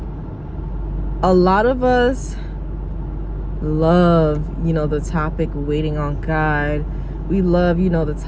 a lot of us love, the topic waiting on God. We love, the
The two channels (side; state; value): both; identical; correlation 1.00